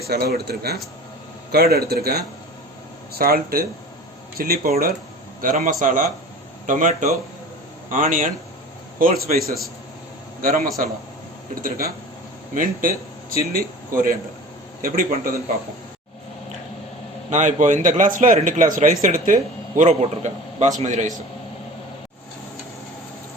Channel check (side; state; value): both; normal; correlation 0.39